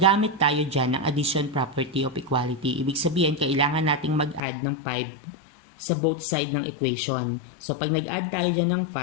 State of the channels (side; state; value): right; drops out; at 4.4 s